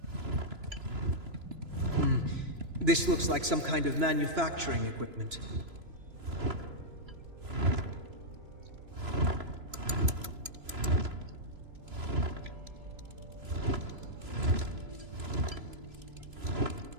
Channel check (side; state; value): left; late; 3.0 ms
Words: This looks like some kind of manufacturing equipment.